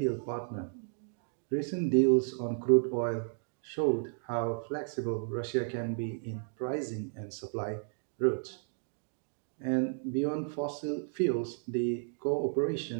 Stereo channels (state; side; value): silent; left; 56 dB below the other